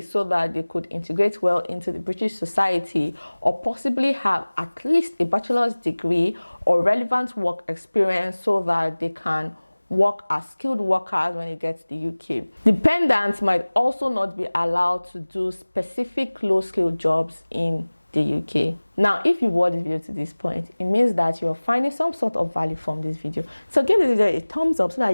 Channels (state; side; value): inverted; both; correlation -1.00